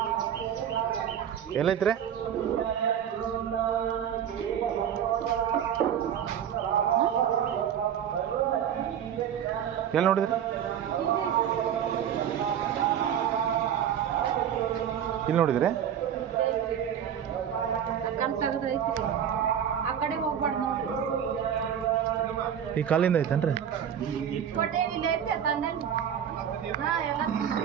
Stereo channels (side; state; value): left; quieter; 9.1 dB